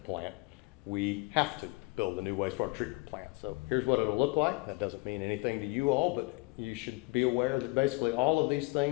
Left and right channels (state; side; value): quieter; right; 26.9 dB